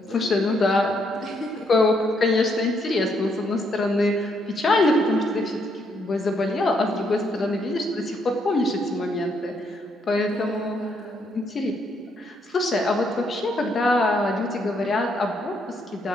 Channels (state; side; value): normal; both; correlation 0.73